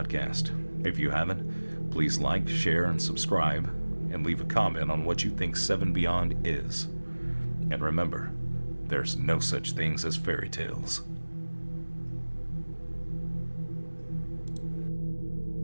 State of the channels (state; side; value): inverted; both; correlation -1.00